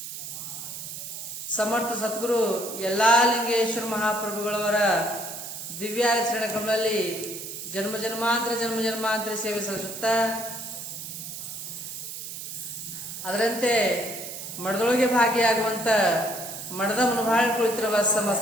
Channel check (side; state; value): right; noise; hiss, 9 dB below the sound